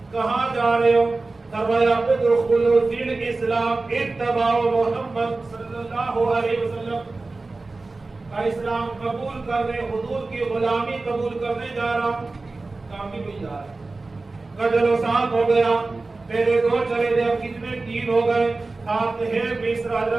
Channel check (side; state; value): left; quieter; 3.5 dB